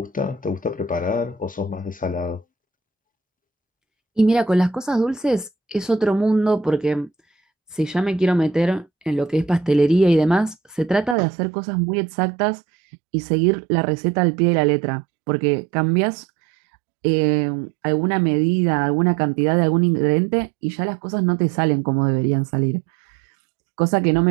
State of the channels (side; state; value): left; drops out; at 11.2 s